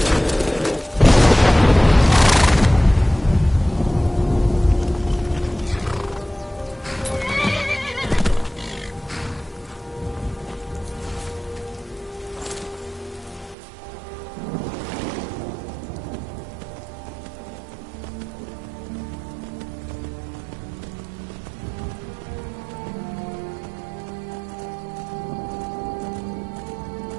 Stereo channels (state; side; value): drops out; left; at 13.6 s